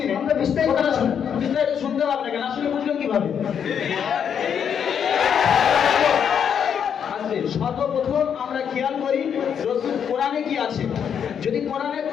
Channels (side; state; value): right; quieter; 7.9 dB